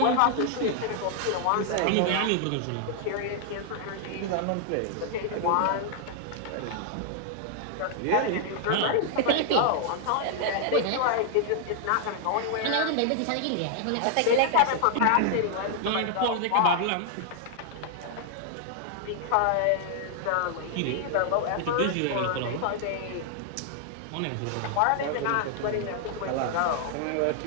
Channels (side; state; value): both; different; correlation 0.00